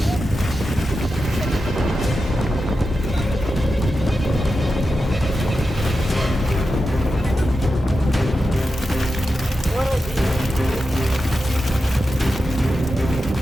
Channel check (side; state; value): both; normal; correlation 0.90